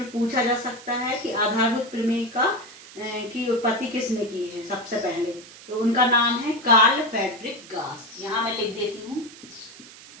में पूछा जा सकता है कि आधारभूत प्रमेय की उत्पत्ति किसने की है। सबसे पहले तो उनका नाम है कार्ल फ्रेडरिक गास। यहाँ मैं लिख देती हूँ,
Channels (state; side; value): noise; right; hiss, 18 dB below the sound